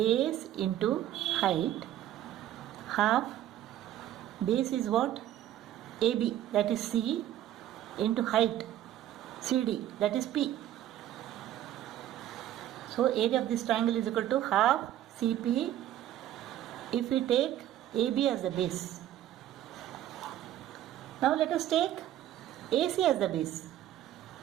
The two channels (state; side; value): quieter; left; 12.4 dB